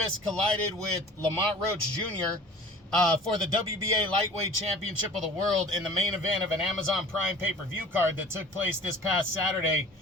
collided with Lamont Roach Jr. For the WBA Lightweight Championship of the World in the main event of an Amazon Prime pay-per-view card that took place this past Saturday,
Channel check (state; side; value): normal; both; correlation 0.44